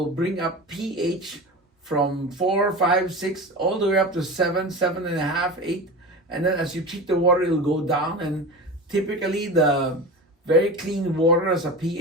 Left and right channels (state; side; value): normal; both; correlation 0.29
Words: bring up pH from 4, 5, 6, all the way up to 7, 7.5, 8. And then as you treat the water, it'll go down. And typically, the very clean water has a